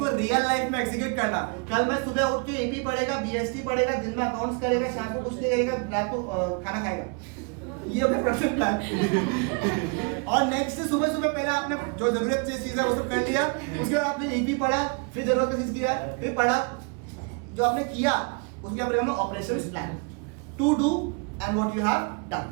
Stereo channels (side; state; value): left; quieter; 33.6 dB